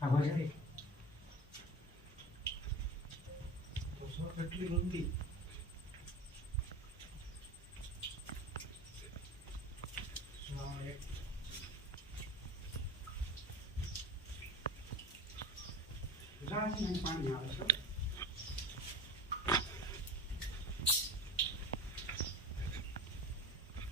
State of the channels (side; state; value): both; normal; correlation 0.32